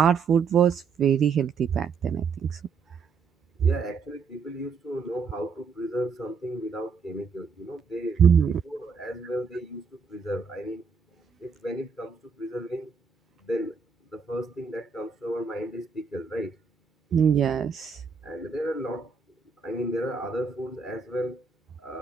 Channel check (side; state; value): left; quieter; 5.6 dB